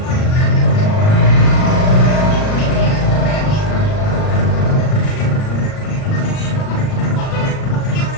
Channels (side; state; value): right; late; 38 ms